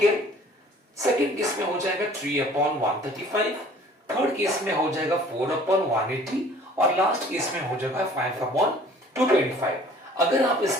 second case में हो जाएगा 3/135, थर्ड केस में हो जाएगा 4/180, और लास्ट केस में हो जाएगा 5/225. अगर आप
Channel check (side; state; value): both; normal; correlation 0.52